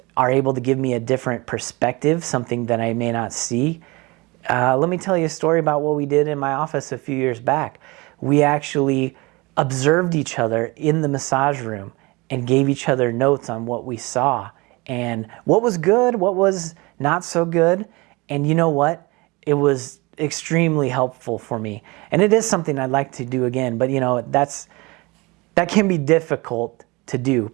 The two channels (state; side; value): quieter; left; 24.6 dB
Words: are able to give me a different perspective, something that I may not see. Let me tell you a story about what we did in my office a few years back. We actually observed each other in the massage room and gave each other notes on what we saw and what was good, what was not so good. And you know what? It was extremely helpful for me. And it is something I'd like to do again, but you know, that can be difficult to do,